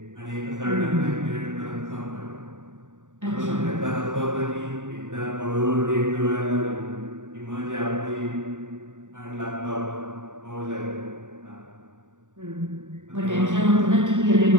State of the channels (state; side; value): late; left; 0.86 ms